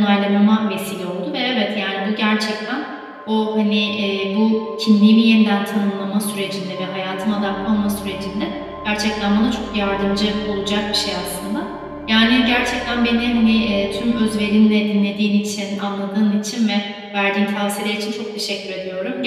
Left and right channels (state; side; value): identical; both; correlation 1.00